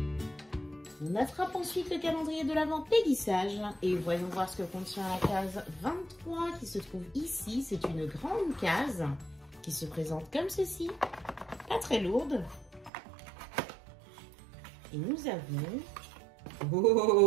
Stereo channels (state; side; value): drops out; left; at 12.9 s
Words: On attrape ensuite le calendrier de l'Avent Péguissage et voyons voir ce que contient la case 23 qui se trouve ici. C'est une grande case qui se présente comme ceci, pas très lourde. Et nous avons...